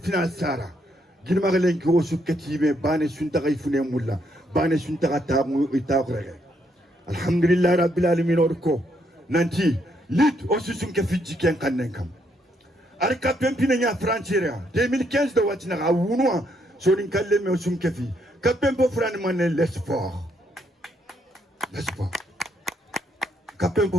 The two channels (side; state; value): both; normal; correlation 0.74